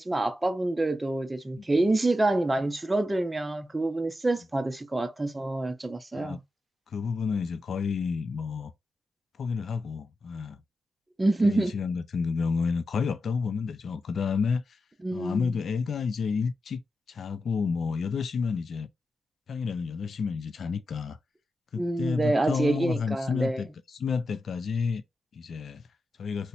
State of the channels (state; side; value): normal; both; correlation 0.89